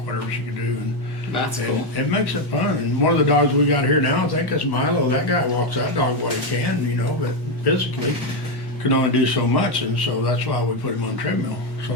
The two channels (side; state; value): both; normal; correlation 0.06